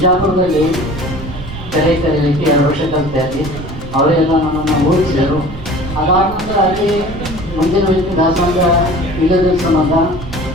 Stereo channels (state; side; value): noise; right; rumble, 13 dB below the sound